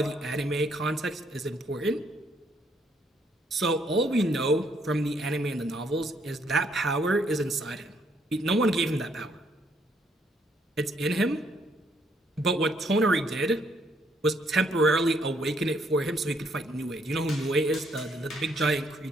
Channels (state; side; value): normal; both; correlation 0.70